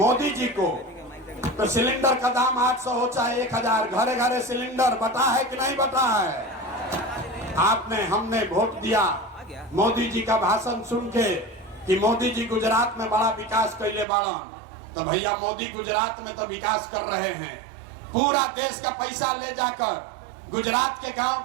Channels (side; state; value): left; drops out; at 14.1 s